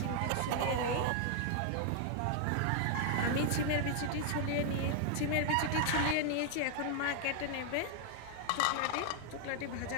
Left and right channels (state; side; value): different; both; correlation 0.00